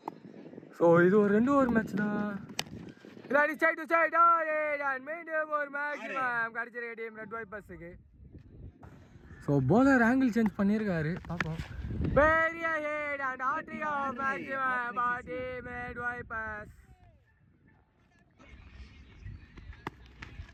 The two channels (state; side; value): identical; both; correlation 1.00